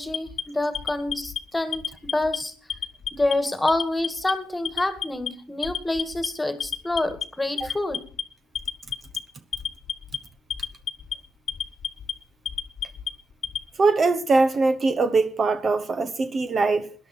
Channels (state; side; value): normal; both; correlation 0.87